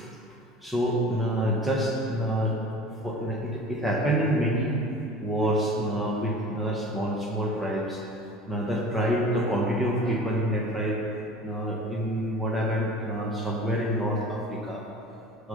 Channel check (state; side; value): normal; both; correlation 0.41